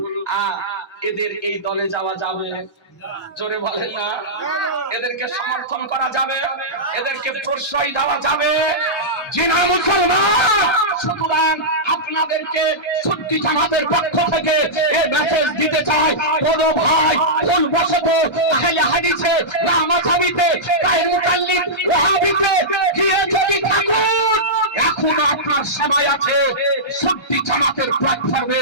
এদের এই দলে যাওয়া যাবে? জোরে বলেন না। এদেরকে সমর্থন করা যাবে? এদেরকে প্রশ্রয় দেওয়া যাবে? জি না মুসলমান। সুতরাং আপনাদেরকে সুন্নি জামাতের পক্ষ থেকে এই মেসেজ দিতে চাই, কোন ভাই ভুলবশত আহলে হাদিসে লামাযাবিতে গায়ের মুতাল্লিক ওয়াহাবিতে গিয়ে যদি থাকুন, এখন আপনার সময় আছে সুন্নি জামাতের প্ল্যাটফর্মে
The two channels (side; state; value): both; normal; correlation -0.13